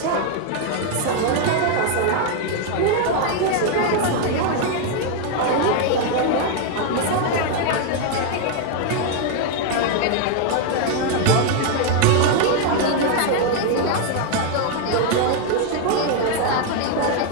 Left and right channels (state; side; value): different; both; correlation 0.00